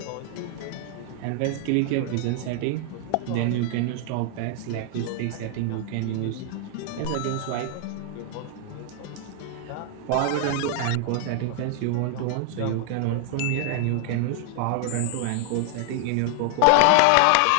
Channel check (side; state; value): both; different; correlation 0.00